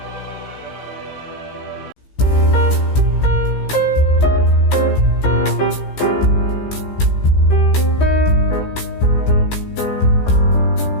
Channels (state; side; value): late; right; 15 ms